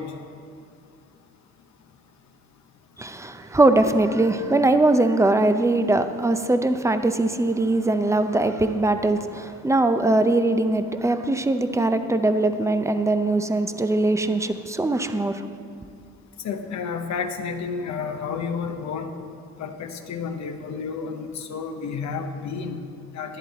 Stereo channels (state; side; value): normal; both; correlation 0.73